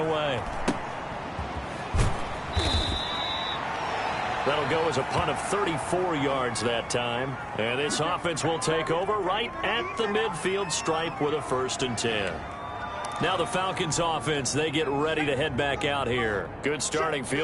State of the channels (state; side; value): identical; both; correlation 1.00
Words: That'll go as a punt of 34 yards that time. And this offense will take over right at the midfield stripe with a 1st and 10. Now the Falcons offense, they get ready to head back out here. Good starting